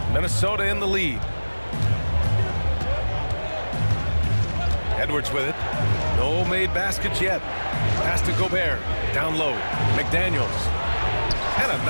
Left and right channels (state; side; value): inverted; both; correlation -1.00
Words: Minnesota in the lead. Edwards with it. No made baskets yet. Pass to Gobert. Down low. McDaniels. And a